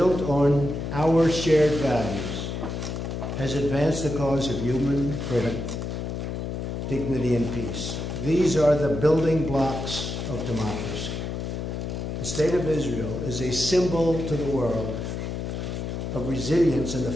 on our shared values, has advanced the cause of human freedom, dignity, and peace. These are the building blocks of democracy. The State of Israel is a symbol to the world of resilience in the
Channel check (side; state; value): left; noise; hum, 4 dB below the sound